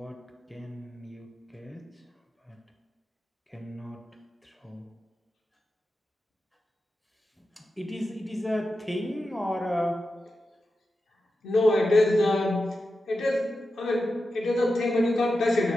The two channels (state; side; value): normal; both; correlation 0.91